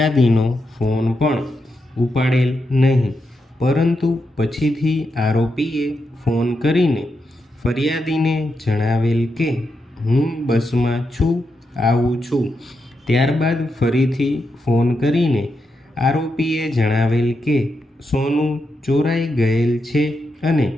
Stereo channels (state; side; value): normal; both; correlation 0.85